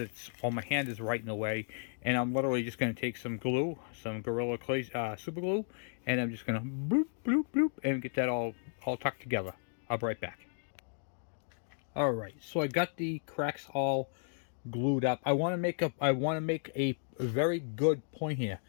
well, my hand is right in the way, and I'm literally just going to take some glue, some Gorilla Clay super glue, and I'm just going to bloop, bloop, bloop, and get that all tucked together. I'll be right back. All right, so I got the cracks all glued up. I want to make a very good point here.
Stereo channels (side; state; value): right; silent; digital silence